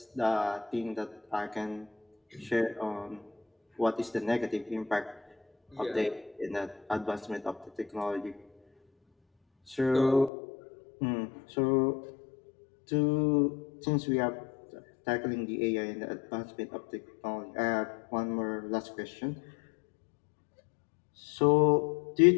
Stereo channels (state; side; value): drops out; right; at 10.3 s